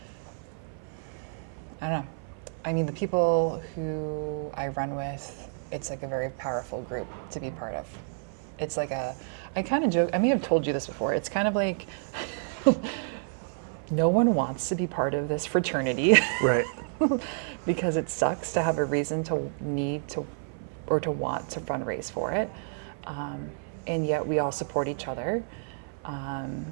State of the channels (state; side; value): silent; left; 56 dB below the other